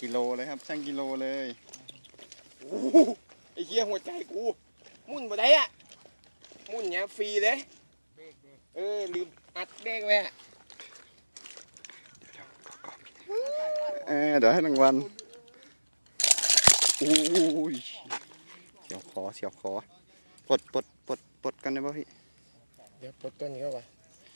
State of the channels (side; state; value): both; inverted; correlation -1.00